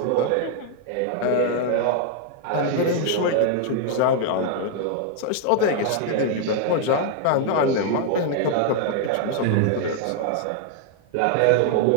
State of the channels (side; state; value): both; different; correlation 0.00